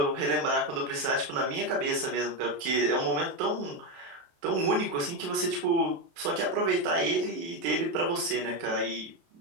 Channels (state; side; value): late; left; 30 ms